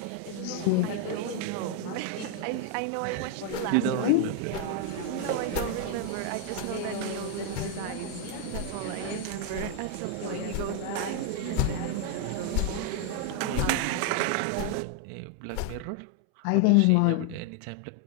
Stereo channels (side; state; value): both; different; correlation 0.00